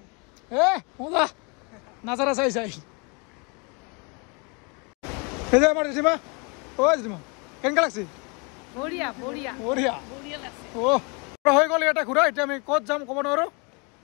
মজা নাজাৰা চাই এই যে আমাৰ জেঠিমা জেঠিমা কেনেকুৱা লাগছে হৈ গ'ল ইয়াতে ঘূৰা এতিয়া আমি ক'ত যাম ক'ব নোৱাৰোঁ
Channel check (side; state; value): right; quieter; 32.1 dB